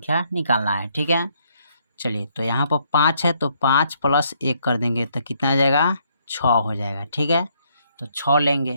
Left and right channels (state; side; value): inverted; both; correlation -0.71